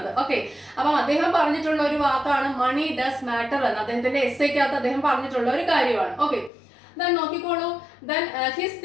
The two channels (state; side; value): drops out; right; at 6.5 s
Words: ഓക്കെ, അപ്പം അദ്ദേഹം പറഞ്ഞിട്ടുള്ള ഒരു വാക്കാണ് മണി ഡസ് മാറ്റർ എന്ന് അദ്ദേഹത്തിന്റെ എസ്സേക്കകത്ത് അദ്ദേഹം പറഞ്ഞിട്ടുള്ള ഒരു കാര്യമാണ്. ഓക്കെ, then നോക്കിക്കോളൂ. Then his